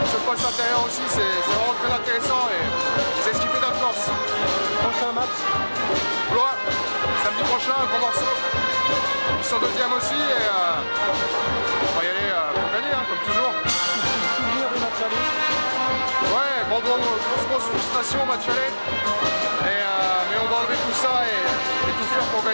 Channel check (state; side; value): inverted; both; correlation -1.00